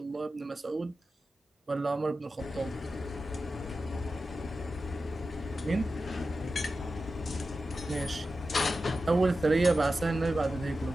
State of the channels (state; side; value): normal; both; correlation 0.92